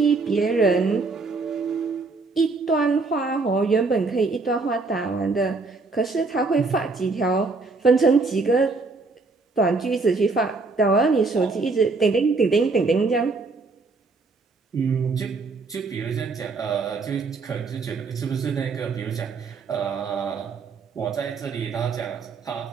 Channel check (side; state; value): left; quieter; 4.0 dB